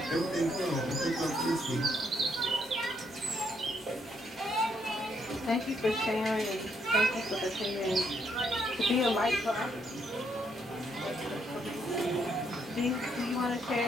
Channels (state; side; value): normal; both; correlation 0.74